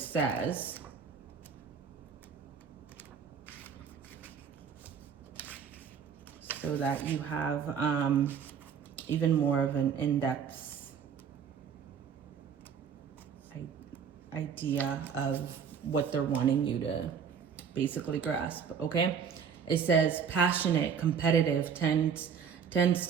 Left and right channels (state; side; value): quieter; left; 7.0 dB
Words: So that you have, even more of an in-depth idea of what they're wanting you to basically grasp, okay? It says passionate, competitive, tends